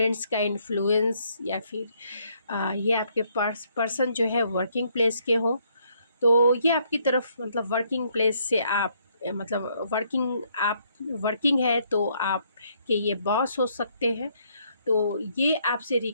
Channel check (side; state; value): both; inverted; correlation -0.70